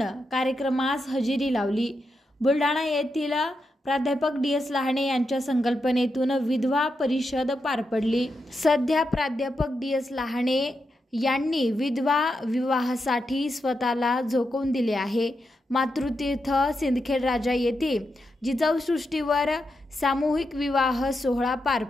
कार्यक्रमास हजेरी लावली। बुलढाणा येथील प्राध्यापक डी.एस. लहाने यांच्या संकल्पनेतून विधवा परिषद पार पडली। सध्या प्राध्यापक डी.एस. लहाने यांनी विधवा विवाहासाठी स्वतःला झोकवून दिले आहे। मातृतीर्थ सिंदखेड राजा येथे जिजाऊ सृष्टीवर सामूहिक विवाह सोहळा पार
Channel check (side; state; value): both; normal; correlation 0.86